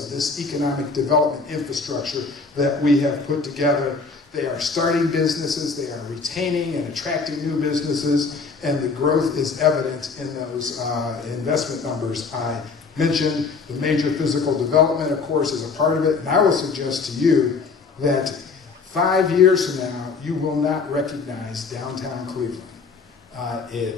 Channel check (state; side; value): quieter; right; 4.6 dB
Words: of this economic development infrastructure that we have put together. They are starting businesses, they are retaining and attracting new businesses, and the growth is evident in those investment numbers I mentioned. The major physical development, of course, is a part of it, and I will suggest to you that 5 years from now, you will not recognize downtown Cleveland.